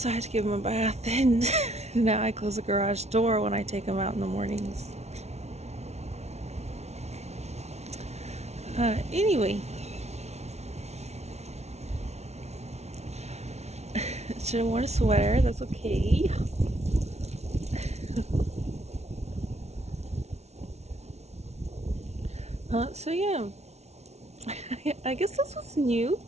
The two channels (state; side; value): late; left; 0.31 ms